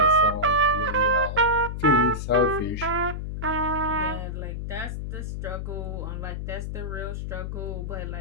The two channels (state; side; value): noise; left; hum, 5 dB below the sound